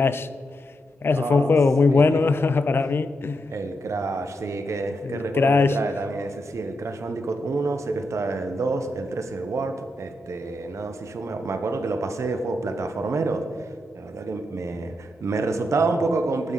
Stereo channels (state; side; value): normal; both; correlation 0.83